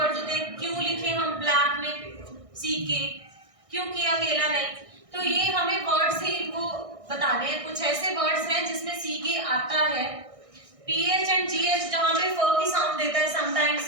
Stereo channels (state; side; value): late; left; 1.6 ms